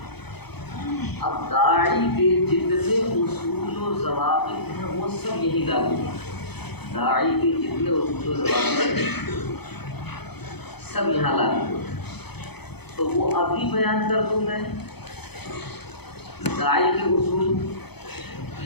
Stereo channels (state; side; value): late; right; 0.98 ms